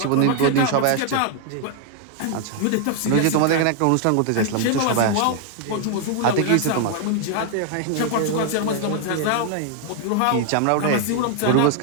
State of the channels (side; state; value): both; different; correlation 0.00